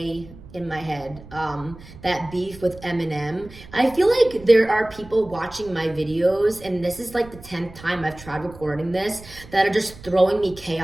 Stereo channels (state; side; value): noise; right; rumble, 19 dB below the sound